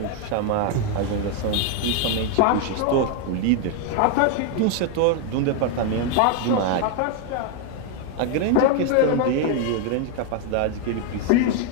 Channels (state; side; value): different; both; correlation 0.01